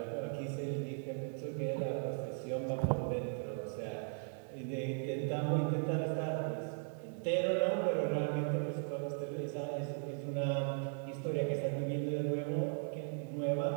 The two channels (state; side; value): silent; left; 53 dB below the other